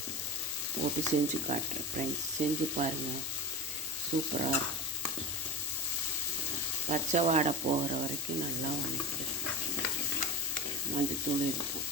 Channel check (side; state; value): both; normal; correlation 0.25